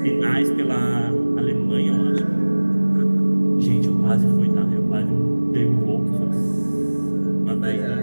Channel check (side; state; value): both; inverted; correlation -1.00